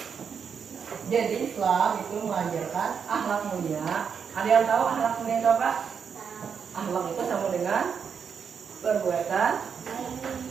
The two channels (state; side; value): quieter; left; 6.8 dB